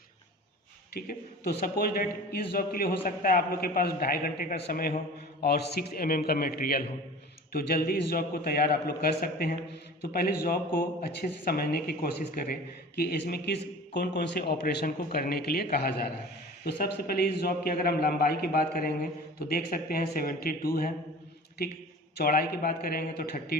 ठीक है। तो सपोज डेट इस जॉब के लिए हो सकता है आप लोग के पास 2.5 घंटे का समय हो और 6 mm का मटेरियल हो, तो जल्दी इस जॉब को तैयार आप लोग कर सकते हैं। तो पहले जॉब को अच्छे से समझने की कोशिश करें कि इसमें कौन कौन से ऑपरेशन को करने के लिए कहा जा रहा है। तो सबसे पहले इस जॉब की अगर हम लंबाई की बात करेंगे तो देख सकते हैं 72 है, ठीक। चौड़ाई की बात करेंगे तो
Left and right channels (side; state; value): both; normal; correlation 0.40